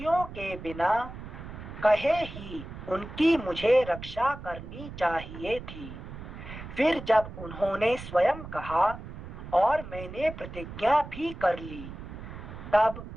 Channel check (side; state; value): right; noise; rumble, 11 dB below the sound